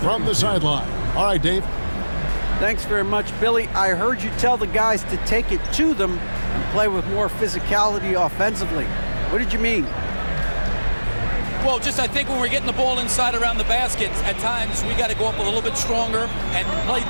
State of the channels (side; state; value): both; inverted; correlation -1.00